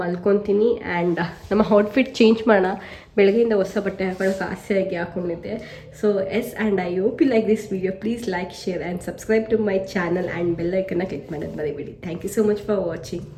ಮಲ್ಕೊತೀನಿ. ಆ್ಯಂಡ್ ನಮ್ಮ ಔಟ್ಫಿಟ್ ಚೇಂಜ್ ಮಾಡೋಣ. ಬೆಳಗ್ಗೆಯಿಂದ ಹೊಸ ಬಟ್ಟೆ ಹಾಕೊಳ್ಳೋಕೆ ಆಸೆಯಾಗಿ ಹಾಕ್ಕೊಂಡಿದ್ದೆ. So yes, and I hope you like this video. Please like, share and subscribe to my channel and bell ಐಕನ್ನ ಕ್ಲಿಕ್ ಮಾಡೋದು ಮರಿಬೇಡಿ. Thank you so much for watching.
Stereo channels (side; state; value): both; identical; correlation 1.00